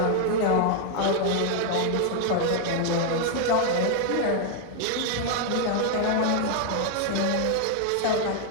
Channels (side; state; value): both; different; correlation 0.00